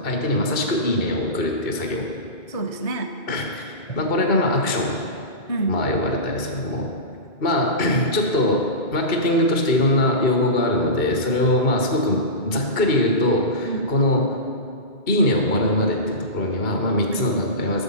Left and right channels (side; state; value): right; late; 2.6 ms